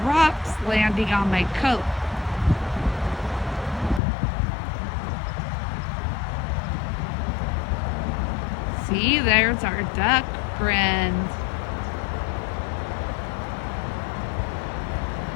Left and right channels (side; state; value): right; drops out; at 4.0 s